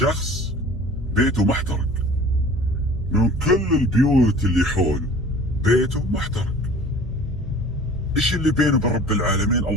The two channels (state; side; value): normal; both; correlation 0.46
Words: بيته محترق، من كل البيوت اللي حوله بيته محترق. ايش اللي بينه وبين رب العالمين